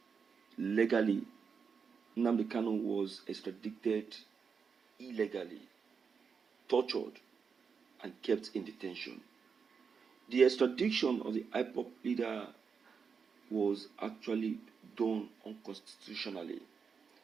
Legally, Nnamdi Kanu was extradited illegally, tortured, and kept in detention. The extradition of the IPOB leader was actually done unconstitutionally.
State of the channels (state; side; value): quieter; left; 5.9 dB